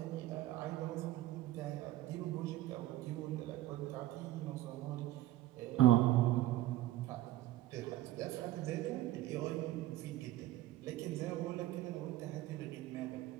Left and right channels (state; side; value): quieter; left; 15.3 dB